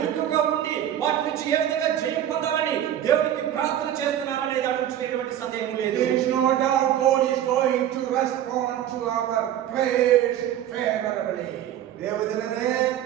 ఉండి వాటి నుంచి ఏ విధంగా జయం పొందాలని దేవునికి ప్రార్థన చేస్తున్నారనే దాని గురించి ఎటువంటి సందేహం లేదు. There is no doubt God is going to respond to our prayers favorably. ದೇವಜನರೇ,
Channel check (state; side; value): quieter; left; 11.2 dB